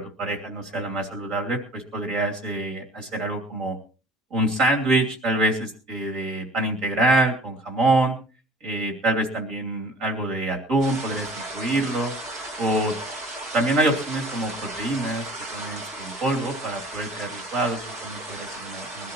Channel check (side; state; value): both; normal; correlation 0.47